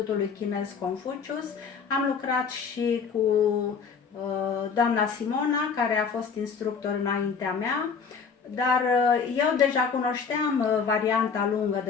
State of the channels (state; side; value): quieter; right; 5.8 dB